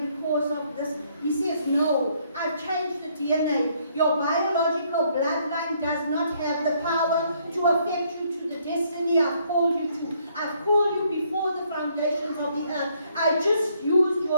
because of this. He says, no, I've changed the DNA. Your biological bloodline does not have the power to affect you to the destiny I've called you to. I've called you before the foundations of the earth. I just used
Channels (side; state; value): both; inverted; correlation -0.68